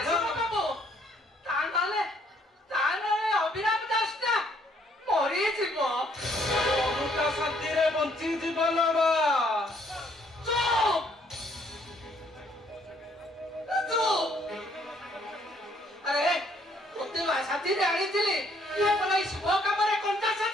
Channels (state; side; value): normal; both; correlation 0.66